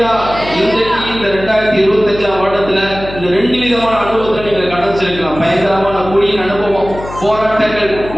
இன்றைக்கு இந்த 2025 வருடத்துல இந்த 2 விதமான அனுபவத்தை நீங்க கடந்திருக்கலாம். பயங்கரமான குழியின் அனுபவம், போராட்டங்கள்,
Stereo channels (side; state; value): left; noise; hum, 13 dB below the sound